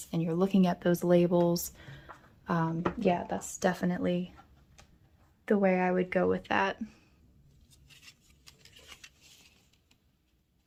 and you're looking at those labels, yeah, that's definitely the way I would go with that.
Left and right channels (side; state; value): both; identical; correlation 1.00